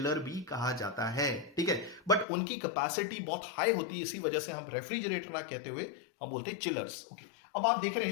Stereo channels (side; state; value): right; drops out; at 2.2 s